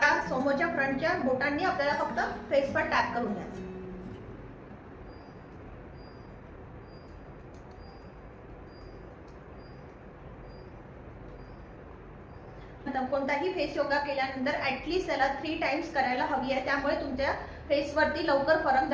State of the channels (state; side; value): identical; both; correlation 1.00